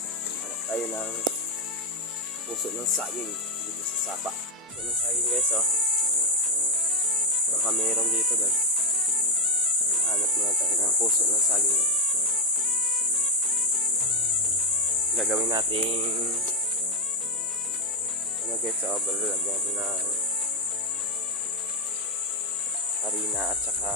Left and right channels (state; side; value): normal; both; correlation 0.03